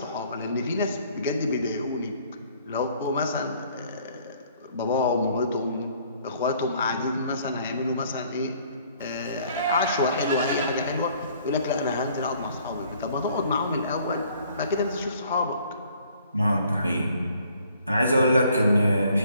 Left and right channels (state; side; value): inverted; both; correlation -0.60